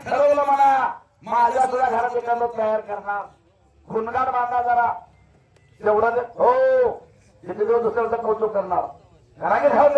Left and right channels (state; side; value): identical; both; correlation 1.00